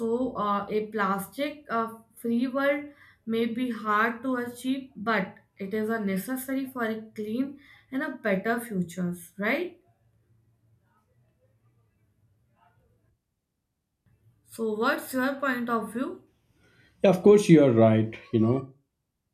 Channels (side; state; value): both; identical; correlation 1.00